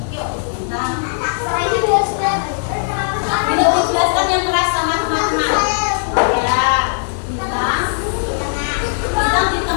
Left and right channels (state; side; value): silent; right; digital silence